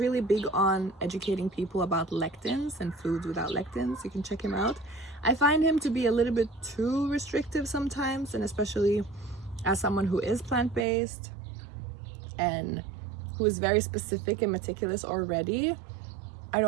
big on educating people about lectins and foods without lectins. You can check him out. I find him to be a little bit too restrictive sometimes, and especially as someone who is plant-based and who is very specific and meticulous already, I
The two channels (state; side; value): drops out; left; at 10.9 s